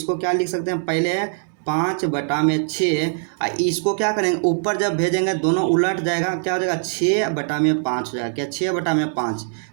क्या लिख सकते हैं, पहले है 5/6 इसको क्या करेंगे ऊपर जब भेजेंगे दोनों उलट जाएगा, क्या हो जाएगा 6/5 हो जाएगा, क्या 6/5।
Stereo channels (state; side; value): silent; left; digital silence